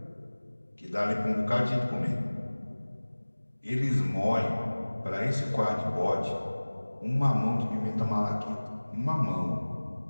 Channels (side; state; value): both; inverted; correlation -1.00